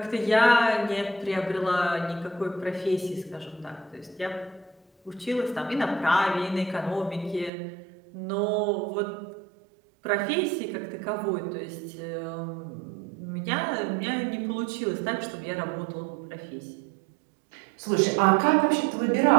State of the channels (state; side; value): drops out; left; at 7.5 s